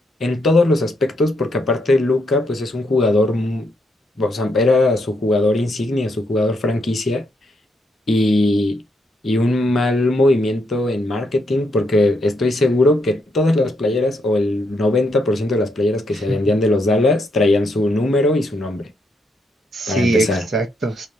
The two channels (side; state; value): both; normal; correlation 0.78